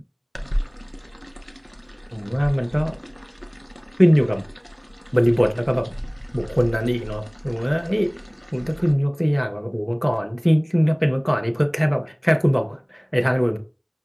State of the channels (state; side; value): identical; both; correlation 1.00